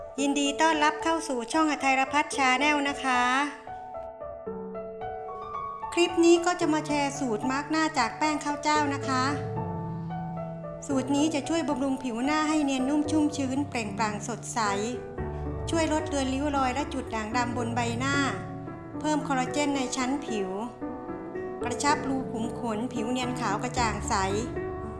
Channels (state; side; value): identical; both; correlation 1.00